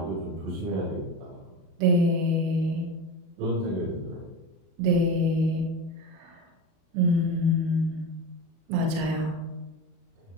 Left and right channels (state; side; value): late; left; 37 ms